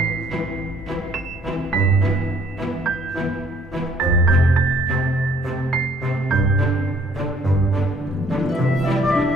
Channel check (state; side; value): normal; both; correlation 0.61